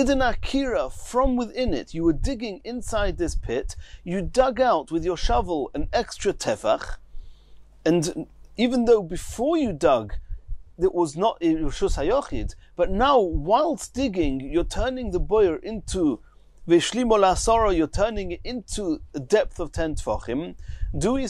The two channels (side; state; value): both; identical; correlation 1.00